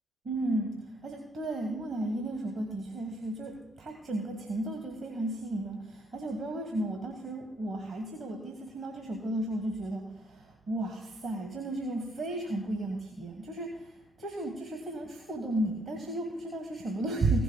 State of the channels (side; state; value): both; normal; correlation 0.69